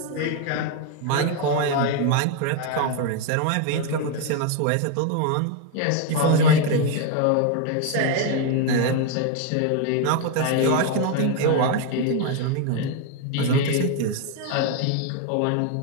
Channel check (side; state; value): both; different; correlation 0.01